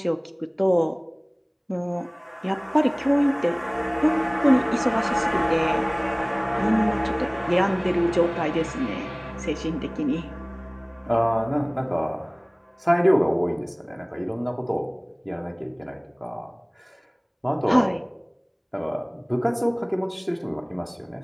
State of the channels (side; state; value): both; identical; correlation 1.00